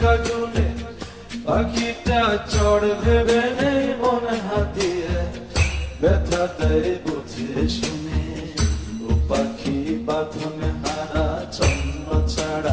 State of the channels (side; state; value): both; identical; correlation 1.00